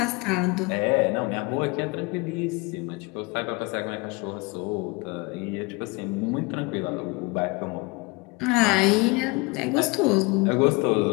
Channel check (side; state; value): right; quieter; 26.0 dB